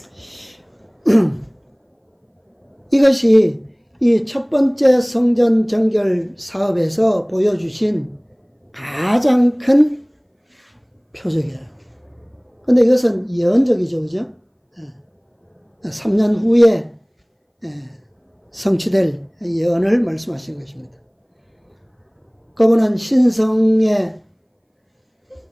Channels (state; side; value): identical; both; correlation 1.00